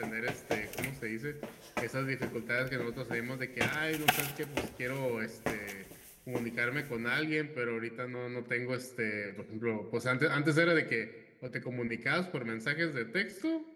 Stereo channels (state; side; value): identical; both; correlation 1.00